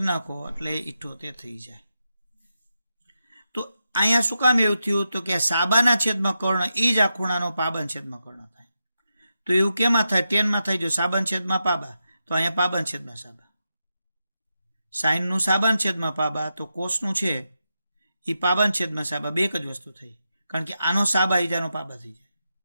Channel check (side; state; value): both; inverted; correlation -0.88